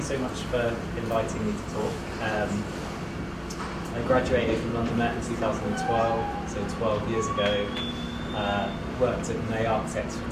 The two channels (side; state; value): both; identical; correlation 1.00